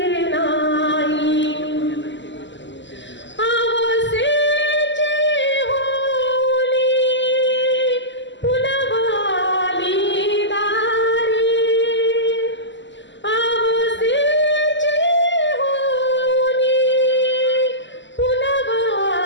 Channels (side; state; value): right; late; 0.54 ms